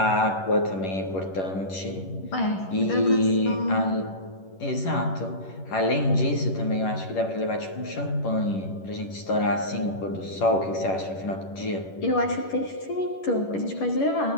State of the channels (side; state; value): right; late; 11 ms